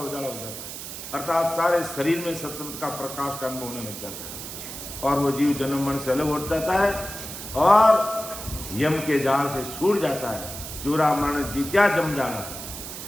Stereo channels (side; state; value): right; noise; hiss, 9 dB below the sound